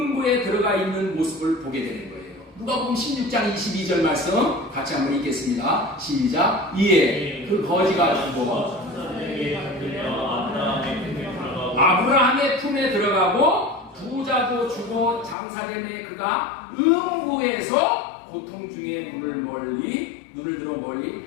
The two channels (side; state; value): right; drops out; at 15.4 s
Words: 들어가 있는 모습을 보게 되는 거예요. 누가복음 16장 22절 말씀 같이 한번 읽겠습니다. 시작. 이에 그 거지가 죽어 아브라함의 품에 들어가고 부자도 죽어 장사됨에 그가 음부에서 고통 중에 눈을 들어